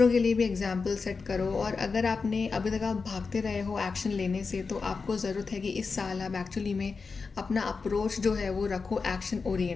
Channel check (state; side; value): quieter; right; 4.7 dB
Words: के लिए भी एग्जाम्पल सेट करो। और अगर आपने अभी तक आप भागते रहे हो एक्शन लेने से, तो आपको ज़रूरत है कि इस साल आप एक्चुअली में अपना अप्रोच जो है वो रखो एक्शन